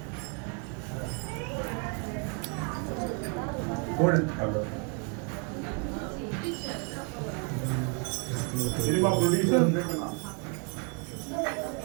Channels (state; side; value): quieter; left; 35.9 dB